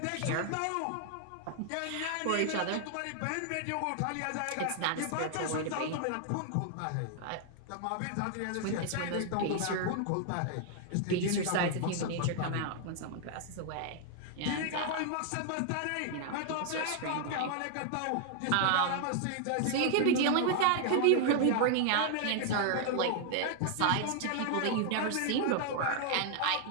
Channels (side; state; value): both; different; correlation 0.00